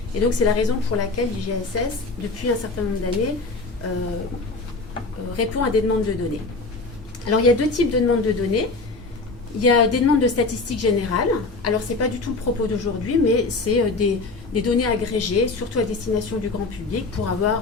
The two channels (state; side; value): quieter; right; 3.6 dB